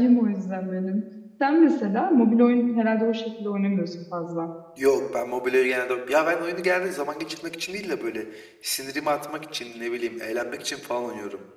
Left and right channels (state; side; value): identical; both; correlation 1.00